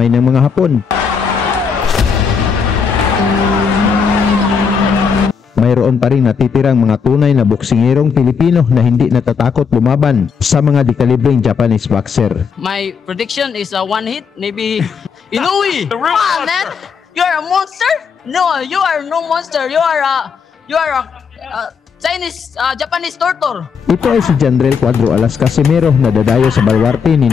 ng mga Hapon, mayroon pa rin natitirang mga tunay na boksingерong Pilipino na hindi natatakot lumaban sa mga dekalibreng Japanese boxer. My prediction is a one hit, maybe Inoue. Come on, man! You are a monster? No, you are no monster. You are a Chinese, Japanese torture. Ito ay si Jandrel Cuadro Alas Casimero na dadayo sa baluarte ni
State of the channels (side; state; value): right; quieter; 6.1 dB